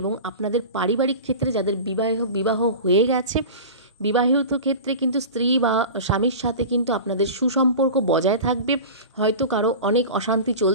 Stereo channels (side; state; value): both; inverted; correlation -0.33